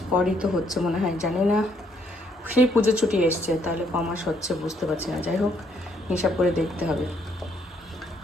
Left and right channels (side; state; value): both; normal; correlation 0.70